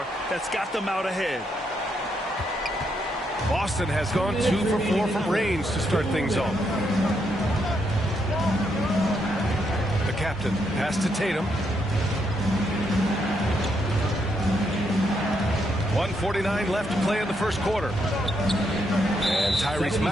that's got them out ahead. Boston has gone 2 for 4 from range to start things off. The captain pass to Tatum. 1:49 left to play in the first quarter. And Tyrese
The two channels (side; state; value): both; normal; correlation 0.78